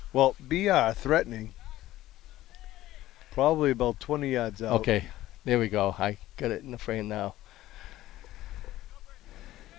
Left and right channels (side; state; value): right; quieter; 15.2 dB